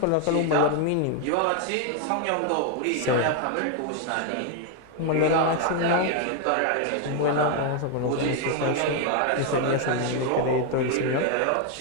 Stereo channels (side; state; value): both; different; correlation 0.01